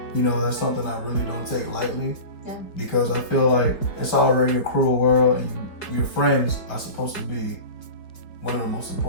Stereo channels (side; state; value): right; late; 4.7 ms